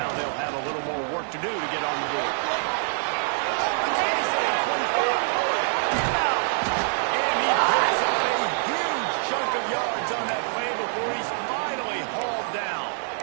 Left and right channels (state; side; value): silent; left; 61 dB below the other